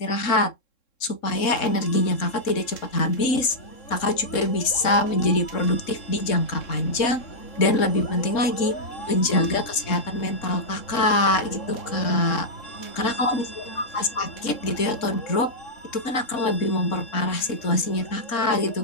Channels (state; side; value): late; right; 3.7 ms